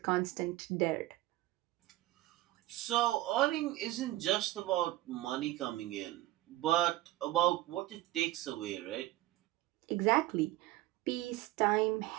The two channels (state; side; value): quieter; left; 16.7 dB